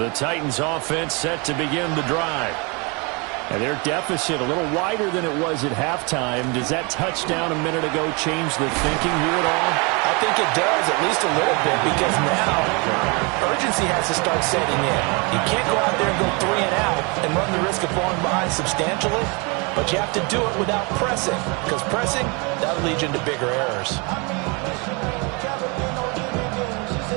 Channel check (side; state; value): left; quieter; 30.5 dB